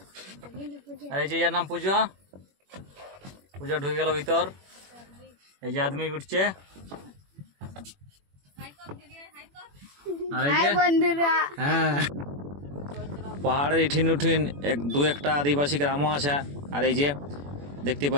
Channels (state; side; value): late; left; 21 ms